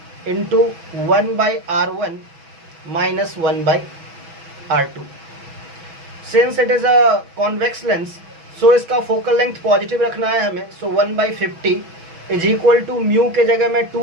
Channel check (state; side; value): late; left; 6.1 ms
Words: into 1/R1 minus 1/R2। Since it is a convex lens, so इसका फोकल लेंथ पॉजिटिव रखना है हमें। So 1/50 is equal to mu के जगह मैं